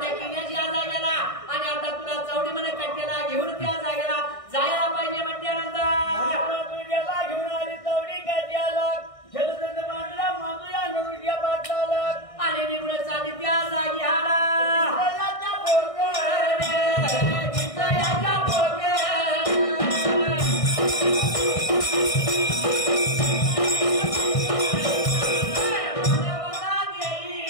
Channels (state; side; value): late; right; 1.6 ms